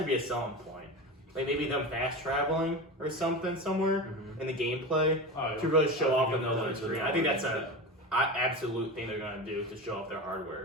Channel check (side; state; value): both; normal; correlation 0.26